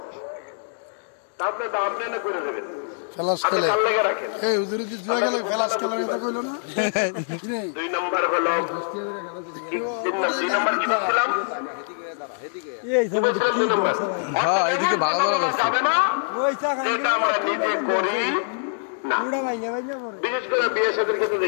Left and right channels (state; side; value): silent; right; digital silence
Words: আপনি তো আপনি না করে দেবেন। দুই নম্বর হলো, দুই নম্বর কি বলছিলাম? এদিকে ভালো যাবে না, এটা আমরা নিজে করি না। বিশেষ করে বিয়ে সাথে ক্ষেত্রে